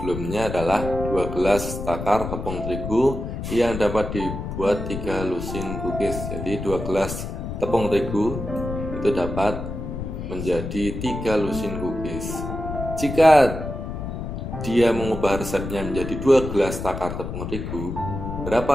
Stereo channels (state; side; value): noise; left; rumble, 6 dB below the sound